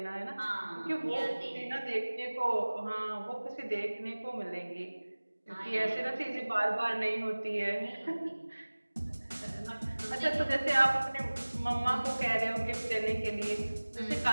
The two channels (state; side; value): inverted; both; correlation -1.00